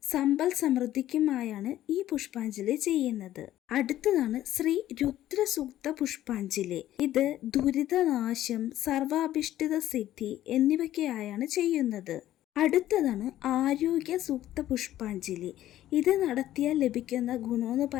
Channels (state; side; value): quieter; right; 13.3 dB